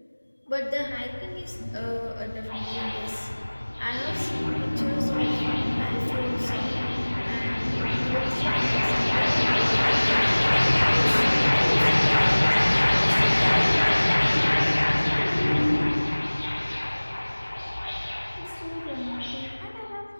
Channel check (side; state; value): both; inverted; correlation -1.00